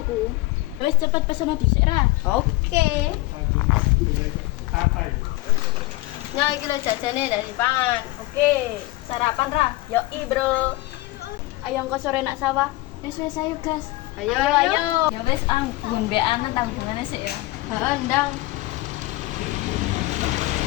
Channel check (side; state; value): right; quieter; 19.9 dB